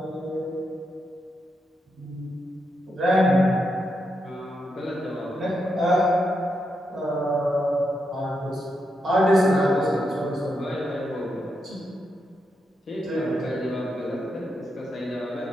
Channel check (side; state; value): both; normal; correlation 0.83